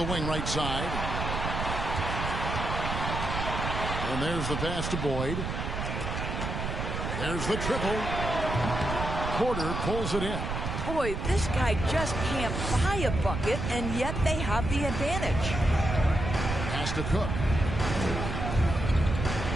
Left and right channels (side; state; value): right; noise; rumble, 3 dB below the sound